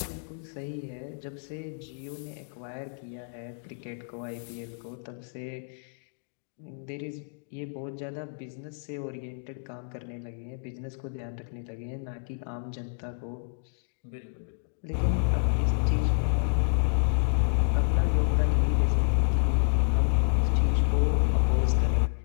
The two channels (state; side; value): silent; right; digital silence